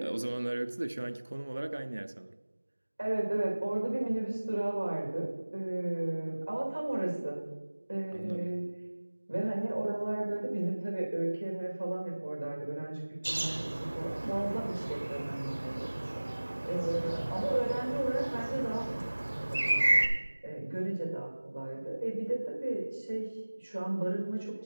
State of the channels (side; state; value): both; inverted; correlation -1.00